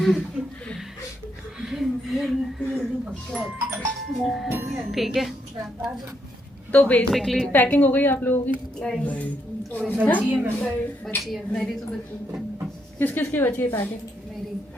ठीक है, तो बेसिकली पैकिंग हो गई आप लोगों की? बची है मेरी तो बची। किस किस की बची है पैकिंग? मेरी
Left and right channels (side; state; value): both; normal; correlation 0.77